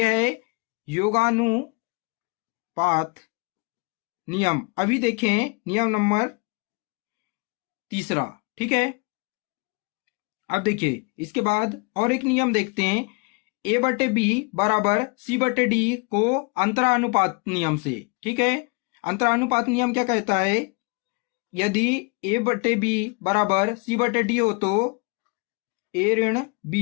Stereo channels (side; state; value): right; quieter; 31.5 dB